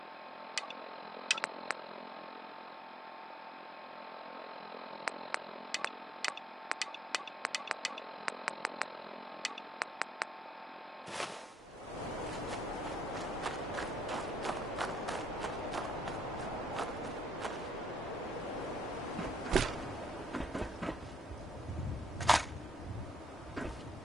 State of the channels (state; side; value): normal; both; correlation 0.71